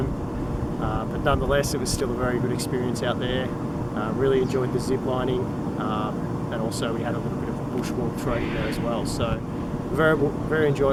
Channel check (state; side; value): identical; both; correlation 1.00